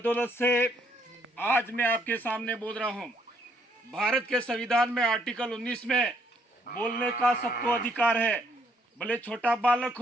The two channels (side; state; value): both; normal; correlation 0.69